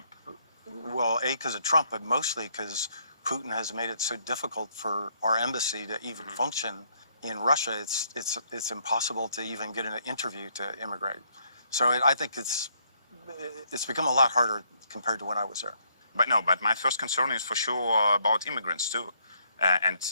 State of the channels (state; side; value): inverted; both; correlation -0.71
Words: Well, because of Trump, but mostly because Putin has made it so difficult for our embassy to even function in Russia. It's impossible to even get an interview to immigrate. So I think it's become a lot harder compared to when I was there. But my first concern is for sure about immigrants too. And